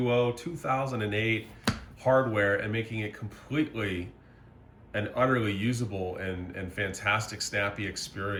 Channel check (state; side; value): identical; both; correlation 1.00